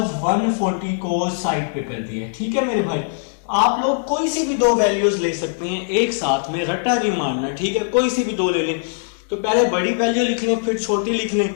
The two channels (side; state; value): right; silent; digital silence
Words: 140 को साइड पे कर दिया। ठीक है मेरे भाई, आप लोग कोई सी भी दो वैल्यूज ले सकते हैं एक साथ में, रट्टा नहीं मारना। ठीक है, कोई सी भी दो ले लें। तो पहले बड़ी वैल्यू लिख लें फिर छोटी लिख लें,